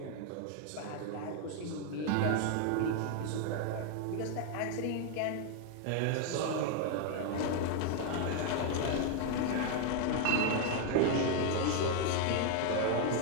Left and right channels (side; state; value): both; different; correlation 0.00